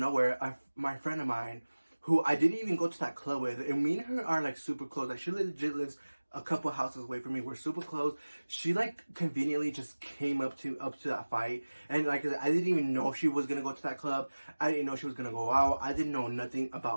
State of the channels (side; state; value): both; inverted; correlation -1.00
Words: my friend of mine, who I didn't even go to that club with, and me and her are like super close. Like, she legit lives a couple houses away from me. We're super close. She like conveniently just came up to that fight, and like I didn't even know she was gonna go to that club. I didn't know she was gonna go out. I didn't know nothing